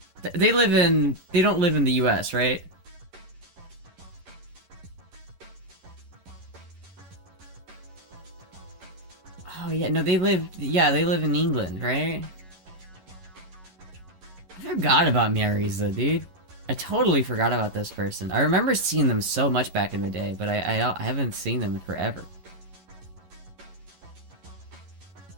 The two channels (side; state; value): left; late; 11 ms